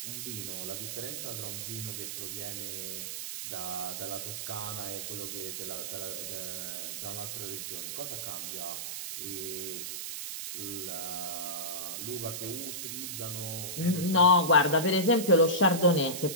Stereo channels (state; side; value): noise; right; hiss, 5 dB below the sound